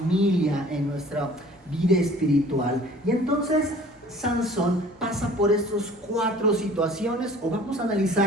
en nuestra vida espiritual. Y entonces Sansón pasa por estas 4 situaciones, o vamos a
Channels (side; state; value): both; normal; correlation 0.49